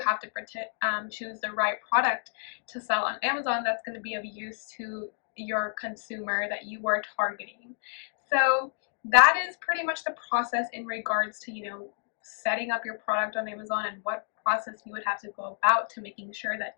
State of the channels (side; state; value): right; silent; digital silence